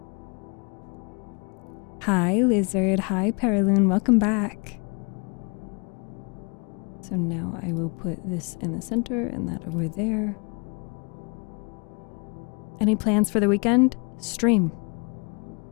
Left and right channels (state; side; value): quieter; right; 33.6 dB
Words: Hi, Lizard. Hi, Paraloon. Welcome back. So now I will put this in the center and that over there. Any plans for the weekend? Stream.